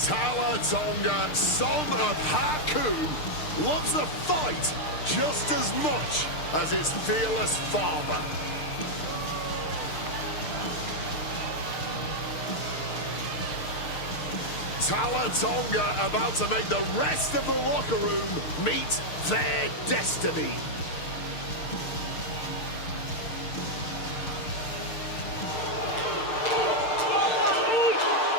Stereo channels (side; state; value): right; late; 6.6 ms